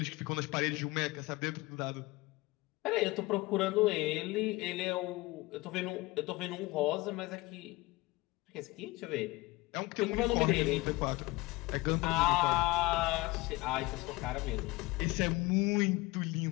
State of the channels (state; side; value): quieter; right; 21.3 dB